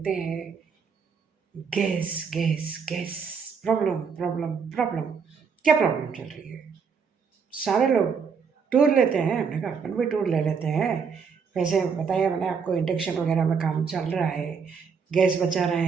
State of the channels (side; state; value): left; quieter; 6.0 dB